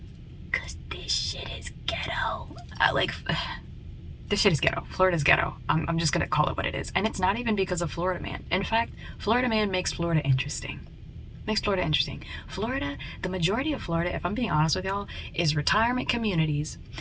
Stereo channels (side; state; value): both; identical; correlation 1.00